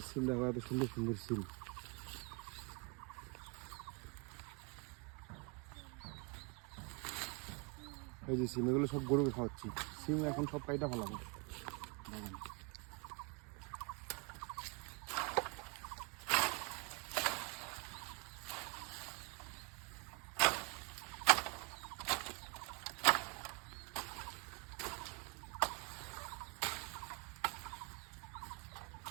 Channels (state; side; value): quieter; left; 32.9 dB